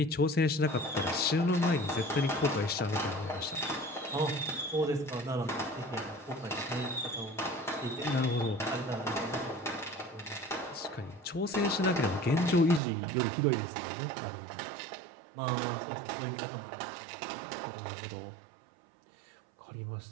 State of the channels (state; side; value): drops out; left; at 12.8 s